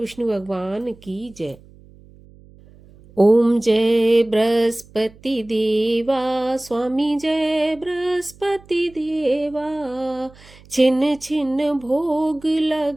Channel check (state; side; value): noise; right; hum, 24 dB below the sound